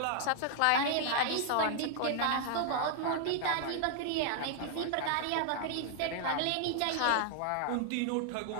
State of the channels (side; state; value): both; different; correlation 0.00